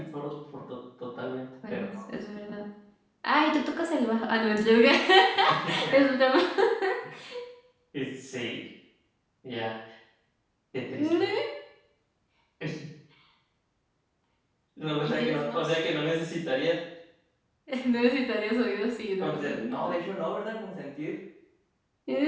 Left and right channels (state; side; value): identical; both; correlation 1.00